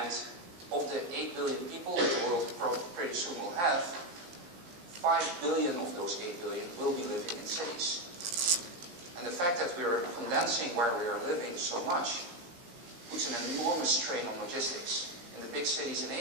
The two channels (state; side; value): late; left; 17 ms